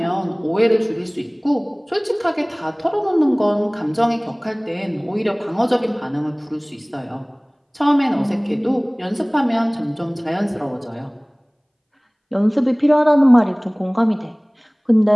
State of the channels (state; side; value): identical; both; correlation 1.00